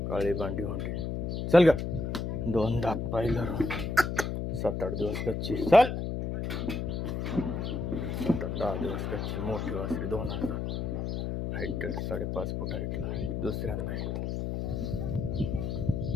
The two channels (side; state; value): left; noise; hum, 2 dB below the sound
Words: काळी बांडी होंडे चल ग 2 दात पाहिलं 7-8 दिवस कच्ची चल 7-10 दिवस कच्ची मोठी वासरी 2000 हाईट 5.5 फूट हाईटला दुसऱ्यांदा